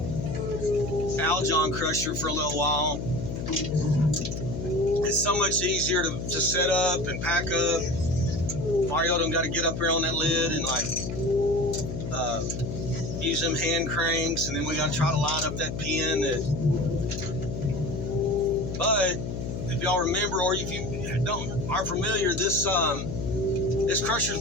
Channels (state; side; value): noise; left; hum, 5 dB below the sound